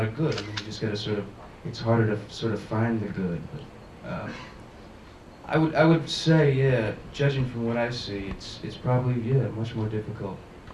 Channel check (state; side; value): identical; both; correlation 1.00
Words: of good. I mean, you just got to sort of, it's harder to sort of find the good. But I would say, yeah, judging from what I see, it's probably, yeah, much more difficult